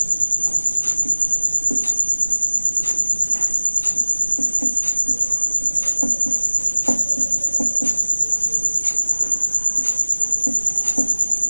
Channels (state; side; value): inverted; both; correlation -1.00